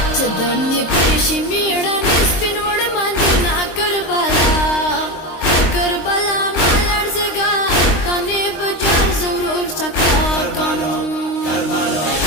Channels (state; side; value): late; right; 23 ms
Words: چدرنی پیشی میړه نسپین وړ مندنا کربلا کربلا مالړ زګا کنه بجار ضرور سکا کم